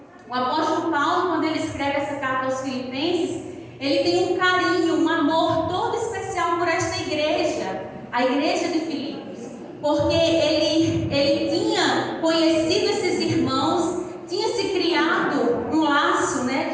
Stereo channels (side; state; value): both; identical; correlation 1.00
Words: O apóstolo Paulo, quando ele escreve essa carta aos Filipenses, ele tem um carinho, um amor todo especial por esta igreja, a igreja de Filipos, porque ele tinha conhecido esses irmãos, tinha se criado um laço, né,